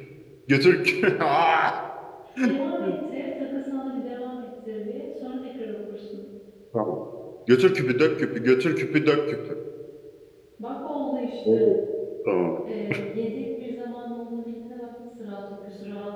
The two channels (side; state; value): both; identical; correlation 1.00